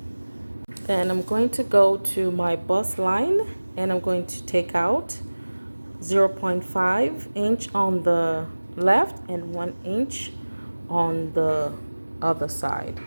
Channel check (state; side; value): inverted; both; correlation -1.00